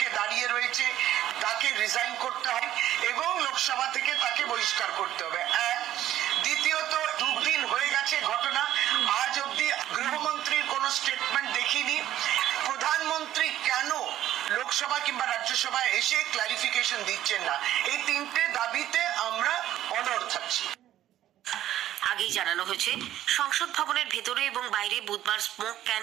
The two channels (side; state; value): left; quieter; 12.7 dB